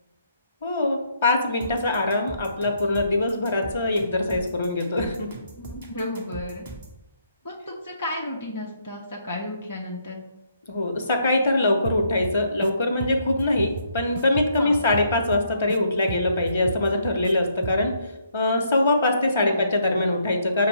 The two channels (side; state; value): both; inverted; correlation -0.72